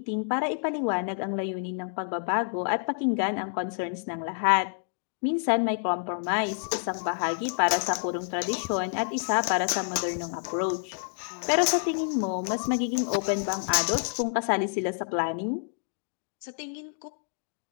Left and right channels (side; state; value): right; silent; digital silence